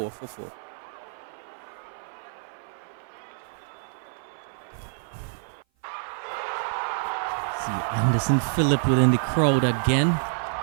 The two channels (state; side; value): silent; left; 55 dB below the other